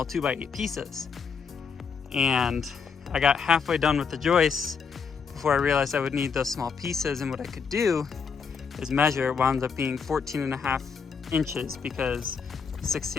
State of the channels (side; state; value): right; quieter; 6.0 dB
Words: 2x8 pieces. And I got halfway done with the joists before I realized I would need those small pieces, and what I could do is measure. It wound up being 14.5 inches because